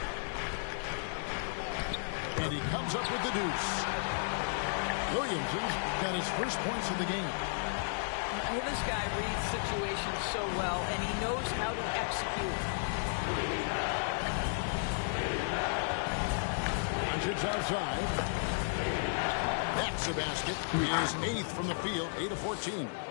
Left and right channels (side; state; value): right; silent; 55 dB below the other